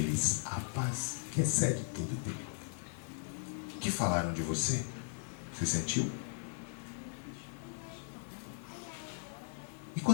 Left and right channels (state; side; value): silent; right; digital silence